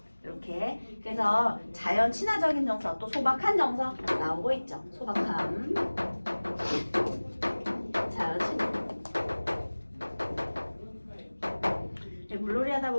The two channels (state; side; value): inverted; both; correlation -1.00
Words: 이렇게 그래서 자연 친화적인 정서 또 소박한 정서 나오고 있죠. 소박함 자연 친화. 물놀이 하다